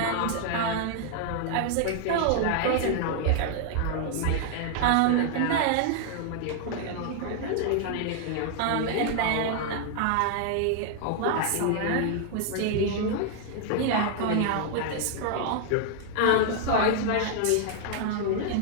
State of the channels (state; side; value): different; both; correlation 0.00